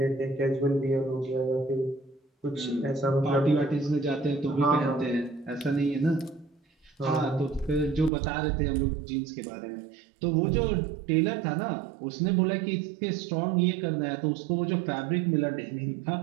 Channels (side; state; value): left; drops out; at 8.1 s